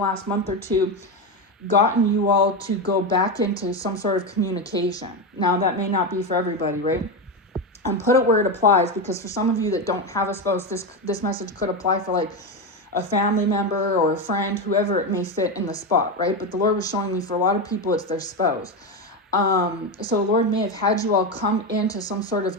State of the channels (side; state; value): both; normal; correlation 0.14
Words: month or two, gotten you all to go back into some sort of communication. Now, that may not be for everybody, right? And put it where it applies, because for some of you that don't have a spouse, this message could apply for like a family member or a friend, whoever it may fit in the spot, right? But the Lord was showing me for a lot of people, it's their spouse. So the Lord may have had you all come into some sort of